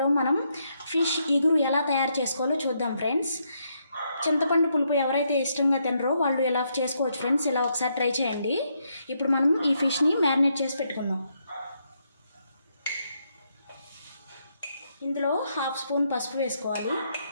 మనం ఫిష్ ఇగురు ఎలా తయారు చేసుకోవాలో చూద్దాం ఫ్రెండ్స్. చింతపండు పులుపు ఎవరైతే ఇష్టంగా తినరో వాళ్ళు ఎలా చేసుకోవచ్చు ఫ్రెండ్స్. ఇలా ఒకసారి ట్రై చేయండి. ఇప్పుడు మనం ఈ ఫిష్ని మ్యారినేట్ చేసి పెట్టుకుందాం. ఇందులో 1/2 స్పూన్ పసుపు వేసుకోవాలి,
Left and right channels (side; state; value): both; inverted; correlation -0.77